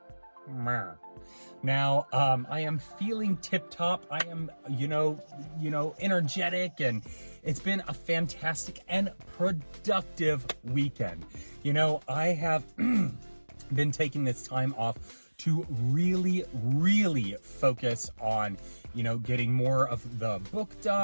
Now, I am feeling tip-top. I am, energetic, and it's been a fantastic and productive weekend. I have been taking this time off to really focus on, getting more of the book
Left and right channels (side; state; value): both; inverted; correlation -1.00